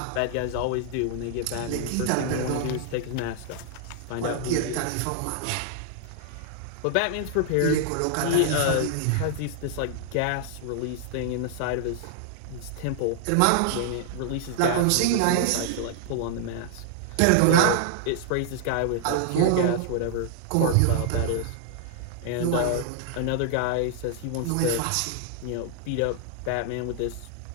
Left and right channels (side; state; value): both; different; correlation -0.01